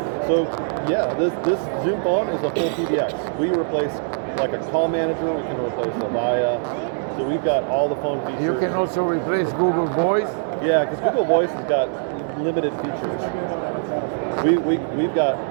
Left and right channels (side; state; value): left; silent; 64 dB below the other